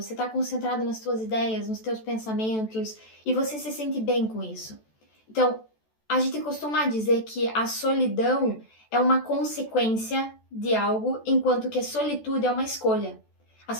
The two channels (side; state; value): right; late; 14 ms